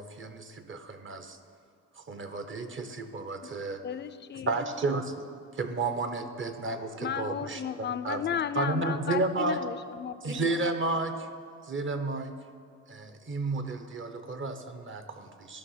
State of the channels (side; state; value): both; normal; correlation 0.13